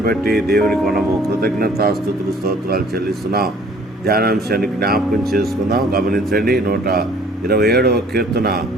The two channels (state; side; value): normal; both; correlation 0.56